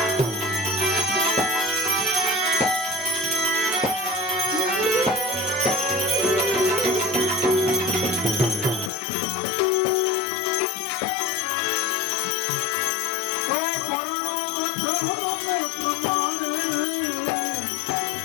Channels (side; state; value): right; drops out; at 8.9 s